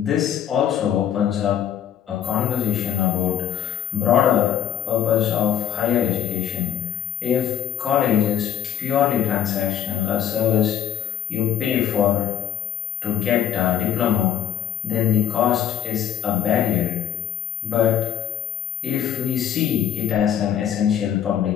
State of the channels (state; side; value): quieter; right; 10.3 dB